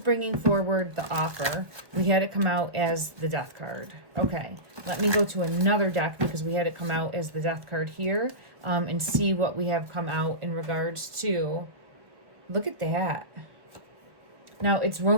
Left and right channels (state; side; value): late; left; 1.3 ms